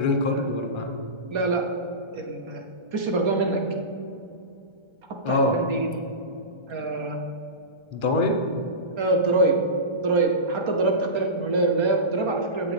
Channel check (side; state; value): left; late; 1.3 ms